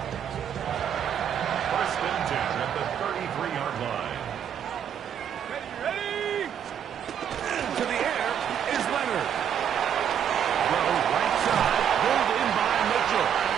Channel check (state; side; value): quieter; left; 8.8 dB